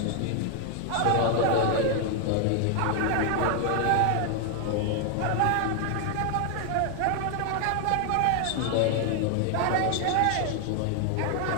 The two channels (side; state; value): both; different; correlation 0.00